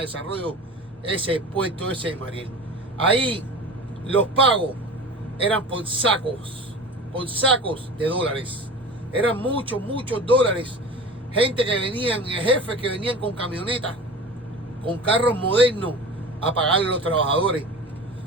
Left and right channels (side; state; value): both; normal; correlation 0.35